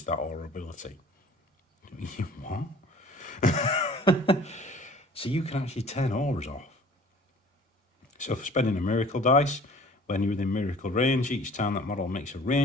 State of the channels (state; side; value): normal; both; correlation 0.49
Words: that aura ability. What? So you can actually turn auras off. So for spending a miracle dice, when you're within miracle range, each time that model makes a